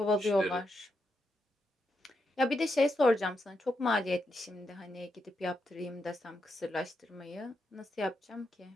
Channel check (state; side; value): normal; both; correlation 0.83